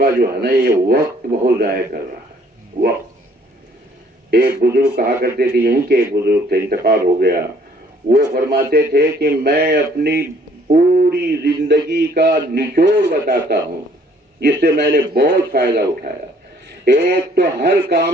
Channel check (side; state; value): both; normal; correlation 0.61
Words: جو ہے نا، یہ وقت بہت ضائع کر رہا ہے، وقت۔ ایک بزرگ کہا کرتے تھے، یہیں کے ایک بزرگ تھے، انتقال ہو گیا، وہ فرماتے تھے کہ میں اپنی پوری زندگی کا نچوڑ بتاتا ہوں جس سے میں نے بہت فائدہ اٹھایا۔ ایک تو ہر